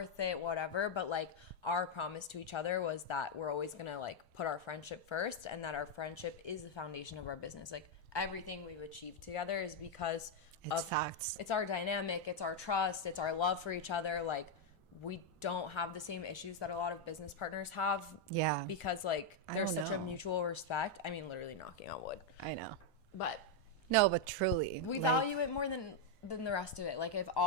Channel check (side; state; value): both; normal; correlation 0.01